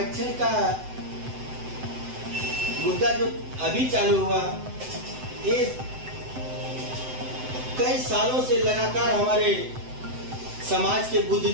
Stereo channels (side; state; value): left; late; 7.8 ms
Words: का मुद्दा जो अभी चालू हुआ, ये कई सालों से लगातार हमारे समाज के